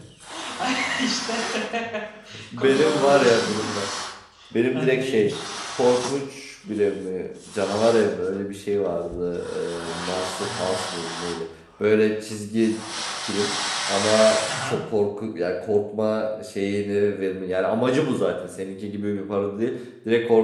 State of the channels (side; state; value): both; identical; correlation 1.00